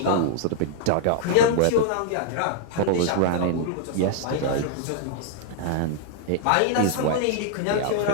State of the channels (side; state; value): both; different; correlation -0.01